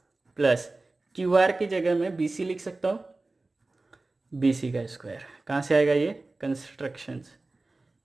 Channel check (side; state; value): left; quieter; 3.2 dB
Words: प्लस क्यू आर की जगह मैं बी सी लिख सकता हूँ, बी सी का स्क्वायर। कहाँ से आएगा ये, कंस्ट्रक्शंस।